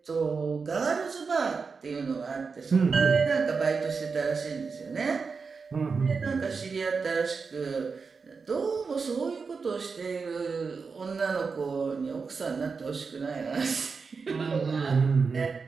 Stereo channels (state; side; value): quieter; left; 5.0 dB